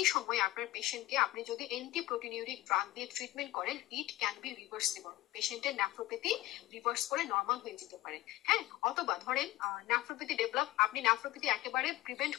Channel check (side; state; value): right; quieter; 17.0 dB